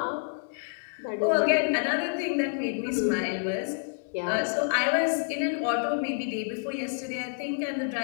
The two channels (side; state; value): right; silent; digital silence